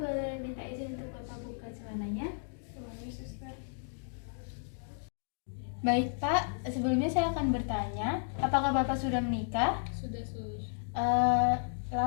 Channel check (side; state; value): right; silent; digital silence